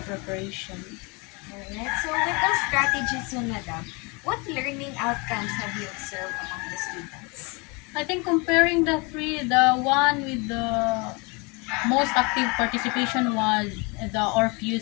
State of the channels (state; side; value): quieter; right; 29.3 dB